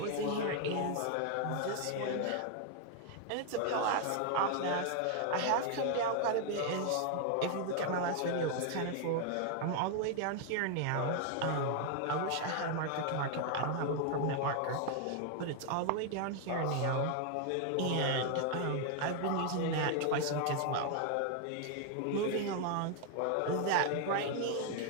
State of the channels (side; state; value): both; different; correlation 0.00